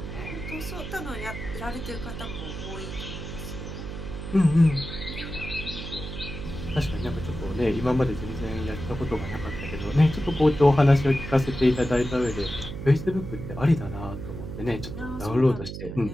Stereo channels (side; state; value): right; noise; hum, 8 dB below the sound